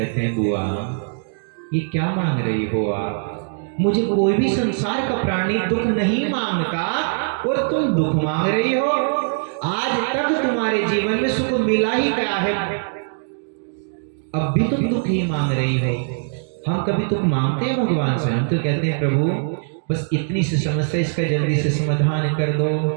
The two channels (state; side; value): silent; left; digital silence